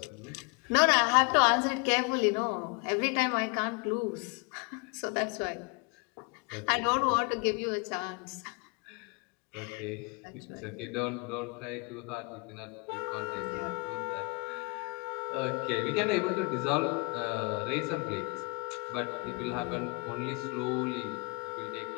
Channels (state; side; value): quieter; right; 30.1 dB